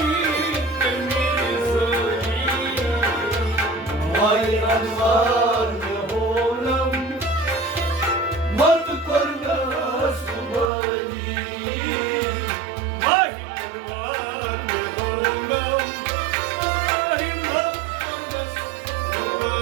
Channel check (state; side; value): drops out; left; at 10.7 s